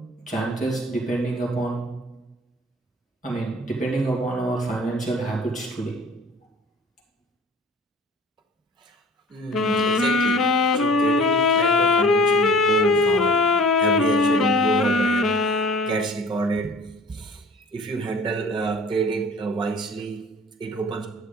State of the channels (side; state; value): both; normal; correlation 0.47